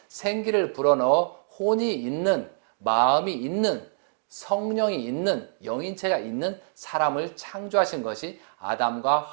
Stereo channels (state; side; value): silent; left; digital silence